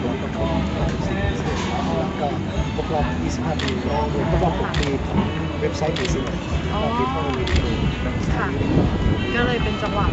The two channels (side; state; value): both; identical; correlation 1.00